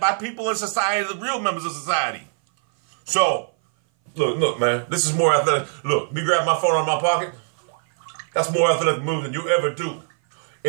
by people in society, the real members of society. So, look, man, this is more athletic. Look, me grab my phone out of my pocket. That's more athletic move than you ever do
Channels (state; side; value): silent; left; 59 dB below the other